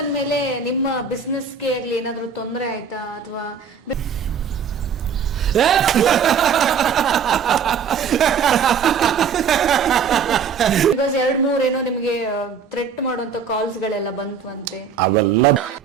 ನಿಮ್ಮ ಬಿಸ್ನೆಸ್ ಗೆ ಆಗ್ಲಿ ಏನಾದ್ರು ತೊಂದರೆ ಆಯ್ತಾ? ಅಥವಾ ಬಿಕಾಸ್ 2-3 ಏನೋ ನಿಮಗೆ ಥ್ರೆಟ್ ಮಾಡುವಂತ ಕಾಲ್ಸ್ ಗಳೆಲ್ಲ ಬಂತಂತೆ. ಅವೆಲ್ಲ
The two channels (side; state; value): left; quieter; 6.4 dB